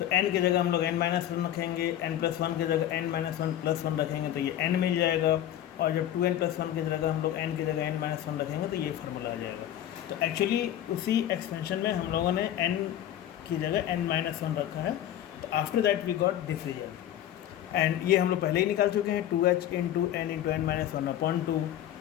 n की जगह हम लोग n minus 1 रखेंगे, n प्लस 1 की जगह n माइनस 1 प्लस 1 रखेंगे, तो ये n मिल जाएगा. और जब 2n प्लस 1 की जगह हम लोग n की जगह n माइनस 1 रखेंगे, तो ये फार्मूला आ जाएगा. तो एक्चुअली उसी एक्सपेंशन में हम लोगों ने n की जगह n माइनस 1 रखा है. तो after that we got this result, and ये हम लोग पहले ही निकाल चुके हैं 2h into n into n minus 1 upon 2.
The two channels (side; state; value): right; quieter; 11.8 dB